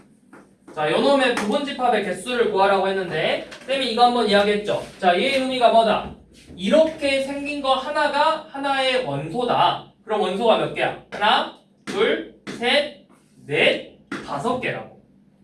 자, 요놈의 부분집합의 개수를 구하라고 했는데 쌤이 이거 한번 이야기했죠. 자, 얘의 의미가 뭐다? 이렇게 생긴 거 하나가 하나의 원소다. 그럼 원소가 몇 개야? 하나, 둘, 셋, 넷, 5개라고.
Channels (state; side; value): identical; both; correlation 1.00